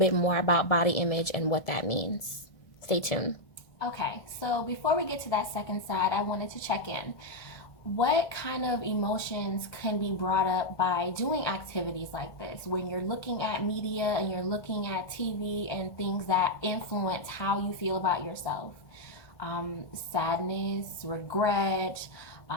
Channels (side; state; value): right; late; 1.5 ms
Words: more about body image and what that means. Stay tuned. Okay, so before we get to that second side, I wanted to check in. What kind of emotions can be brought up by doing activities like this? When you're looking at media and you're looking at TV and things that influence how you feel about yourself. Sadness, regret,